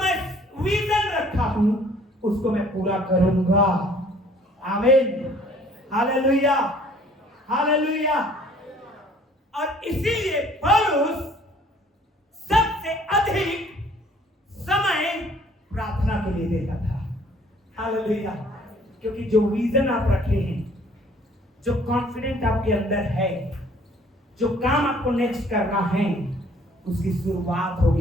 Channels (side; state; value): both; normal; correlation 0.57